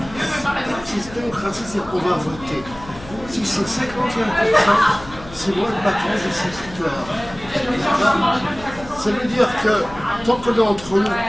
Si démocratie, c'est qu'on va voter. Si c'est 51%, c'est moi le patron de cette histoire. Ça veut dire que tant qu'on est entre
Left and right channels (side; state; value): left; noise; hum, 17 dB below the sound